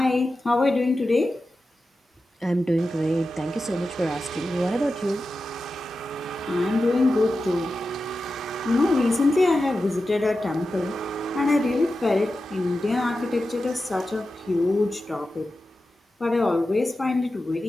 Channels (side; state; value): both; normal; correlation 0.92